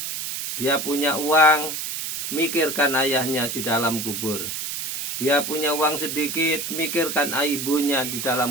Dia punya uang, mikirkan ayahnya di dalam kubur. Dia punya uang sedikit, mikirkan ibunya di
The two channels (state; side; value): noise; right; hiss, 4 dB below the sound